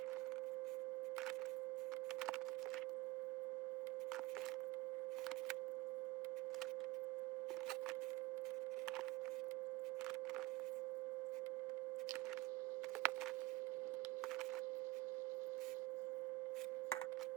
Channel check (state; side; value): quieter; left; 18.5 dB